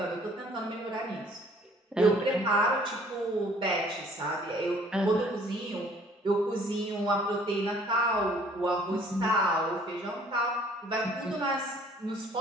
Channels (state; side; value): normal; both; correlation 0.57